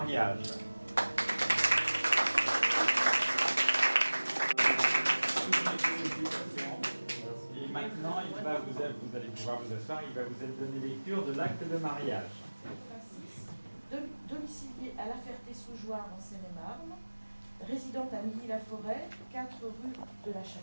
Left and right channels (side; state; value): both; inverted; correlation -1.00